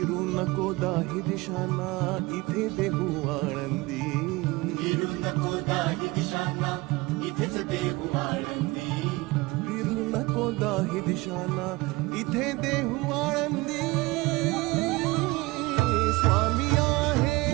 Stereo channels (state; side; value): quieter; left; 22.0 dB